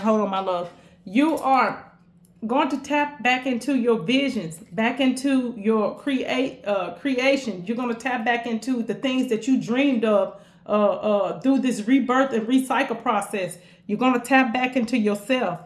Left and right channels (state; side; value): identical; both; correlation 1.00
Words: Hold on, my love. You are going to tap back into your visions, back into your creation. You're going to tap back into the things that you dreamed of through this rebirth and recycle process. You're going to tap back into yourself,